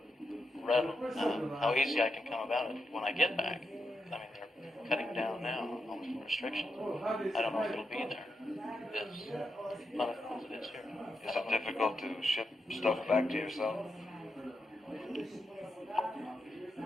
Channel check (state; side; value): normal; both; correlation 0.85